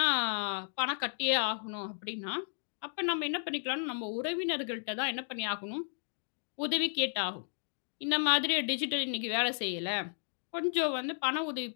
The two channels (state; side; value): silent; right; digital silence